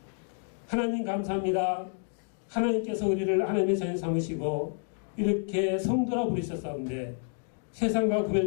하나님 감사합니다. 하나님께서 우리를 하나님의 자녀 삼으시고 이렇게 성도라 부르셨사온데 세상과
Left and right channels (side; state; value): right; silent; 58 dB below the other